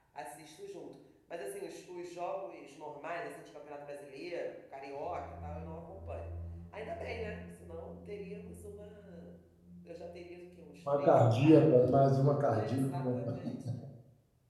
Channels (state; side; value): identical; both; correlation 1.00